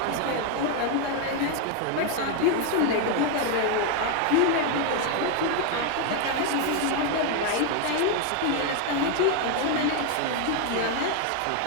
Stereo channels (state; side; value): different; both; correlation 0.01